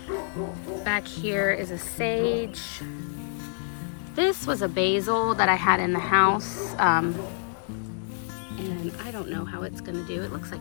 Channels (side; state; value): right; silent; digital silence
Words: Back here is a sage. This was a basil that I had in the house. And I don't know how it's gonna do. It looks